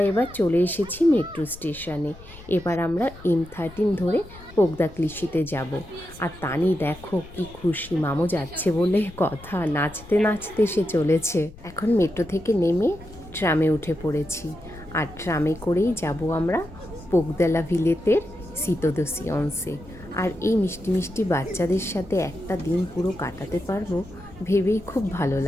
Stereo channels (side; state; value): left; noise; rumble, 19 dB below the sound